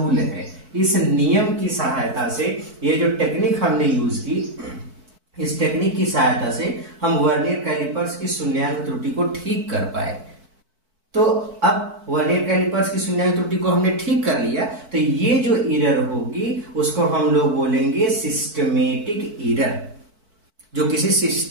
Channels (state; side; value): late; left; 4.5 ms